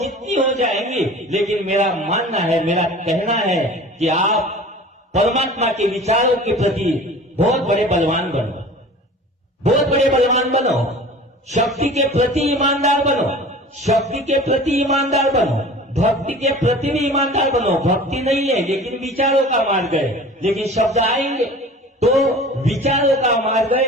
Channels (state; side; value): normal; both; correlation 0.41